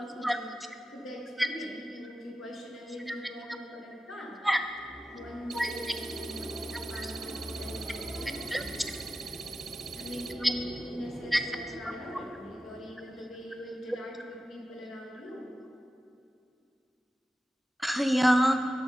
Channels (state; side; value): normal; both; correlation 0.92